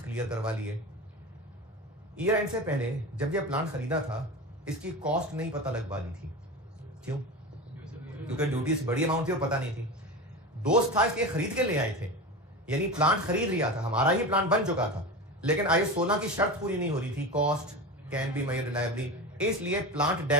क्लियर करवा लिए। ईयर एंड से पहले जब ये प्लांट खरीदा था इसकी कॉस्ट नहीं पता लग पा रही थी। क्यों? क्योंकि ड्यूटीज बड़ी अमाउंट थी और पता नहीं थी। दोस्त था इसलिए खरीद के ले आए थे, यानी प्लांट खरीद लिया था, हमारा ही प्लांट बन चुका था, लेकिन IS 16 की शर्त पूरी नहीं हो रही थी, cost can be made reliably, इसलिए प्लांट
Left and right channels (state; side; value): normal; both; correlation 0.26